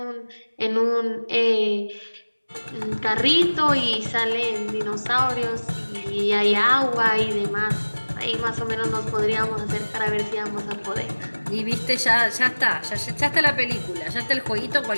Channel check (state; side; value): inverted; both; correlation -1.00